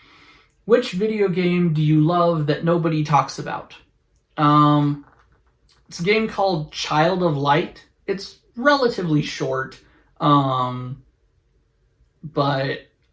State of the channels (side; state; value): both; identical; correlation 1.00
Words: Which video game do you love that nobody talks about? It's a game called Child of Light. It's relatively short, but